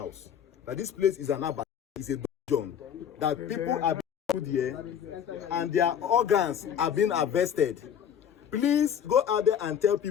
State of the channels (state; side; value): quieter; right; 8.7 dB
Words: that this place is an abattoir, is a dungeon, that people are being put here and their organs are being harvested. Please go out there and tell